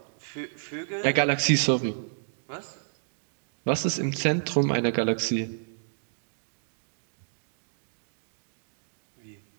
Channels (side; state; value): left; silent; digital silence